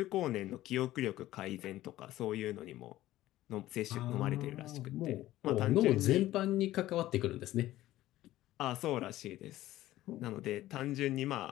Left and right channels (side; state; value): right; quieter; 15.2 dB